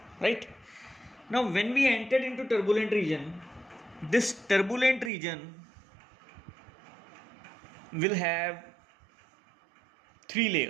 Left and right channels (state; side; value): drops out; left; at 5.1 s